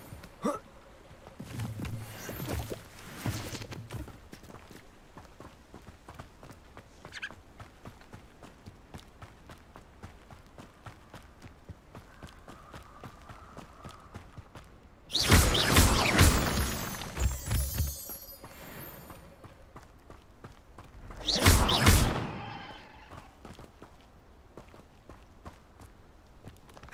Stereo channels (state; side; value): identical; both; correlation 1.00